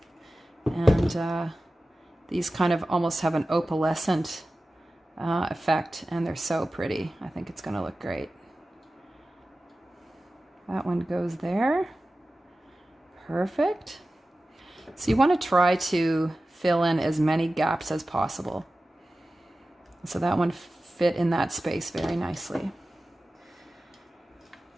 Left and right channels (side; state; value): both; normal; correlation 0.95